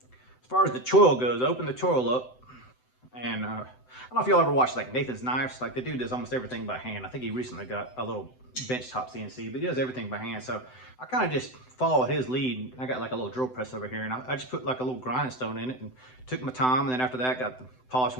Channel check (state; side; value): late; right; 7.9 ms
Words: far as the choil goes, open the choil up, and I don't know if y'all ever watched like Nathan's Knives. Like, the dude does almost everything by hand. I think he recently got a little benchtop CNC, but he does everything by hand. So I kind of just follow his lead. I got like a little drill press over here, and I just put like a little grinding stone in it and took my time. And then after that, got the